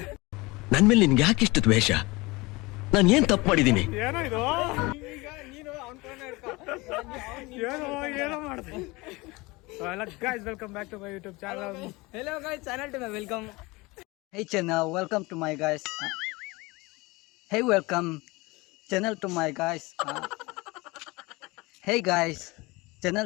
ನನ್ ಮೇಲೆ ನಿನ್ಗೆ ಯಾಕೆ ಇಷ್ಟು ದ್ವೇಷ? ನಾನು ಏನ್ ತಪ್ಪು ಮಾಡಿದೀನಿ? ಏನೋ ಇದು ಏನೋ ಮಾಡಿದೆ. Hello guys, welcome back to my YouTube channel. Hello guys, channel to my welcome. Hey channel, welcome to my guys. Hey, welcome channel to my guys. Hey guys,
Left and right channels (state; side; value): quieter; right; 23.4 dB